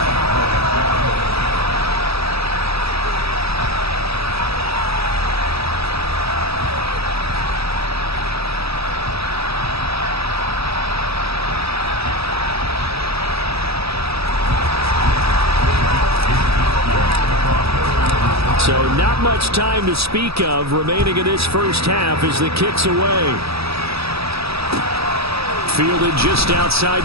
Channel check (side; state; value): left; late; 0.77 ms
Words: So not much time to speak of remaining in this first half as the kick's away. Fielded just